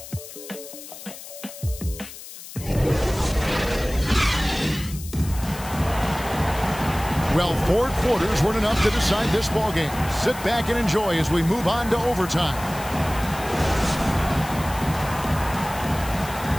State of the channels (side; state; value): left; noise; hiss, 14 dB below the sound